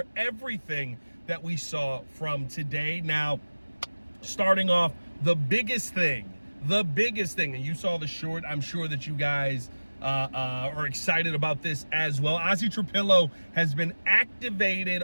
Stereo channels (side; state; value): both; inverted; correlation -1.00